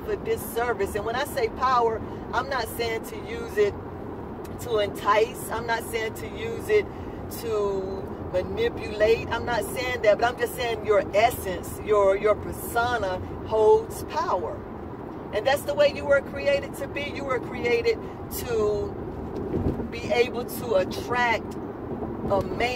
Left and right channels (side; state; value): both; identical; correlation 1.00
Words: a disservice. And when I say power, I'm not saying to use it to entice. I'm not saying to use it to manipulate. I'm not saying that, but I'm just saying your essence, your persona holds power. And that's the way you were created to be. You were created to be able to attract a